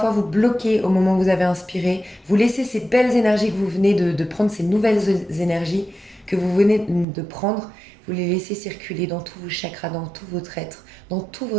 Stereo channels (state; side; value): drops out; left; at 7.1 s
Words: vous bloquez au moment où vous avez inspiré, vous laissez ces belles énergies que vous venez de prendre, ces nouvelles énergies, que vous venez de prendre, vous les laissez circuler dans tous vos chakras, dans tout votre être, dans tout